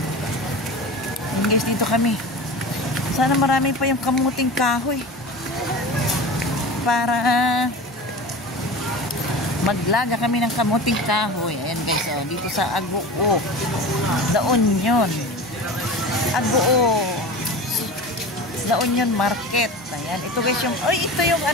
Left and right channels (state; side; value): normal; both; correlation 0.32